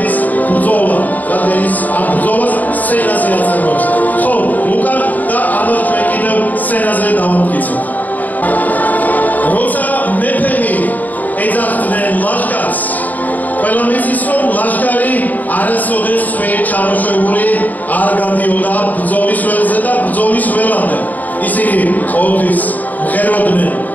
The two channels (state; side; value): late; right; 0.080 ms